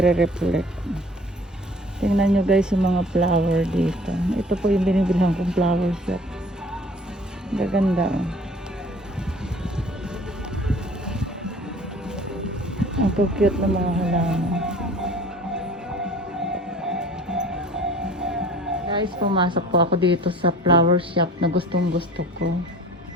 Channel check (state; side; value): normal; both; correlation 0.48